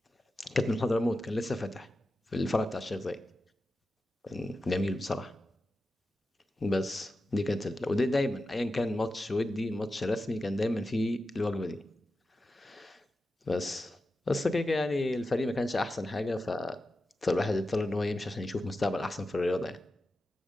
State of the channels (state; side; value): normal; both; correlation 0.92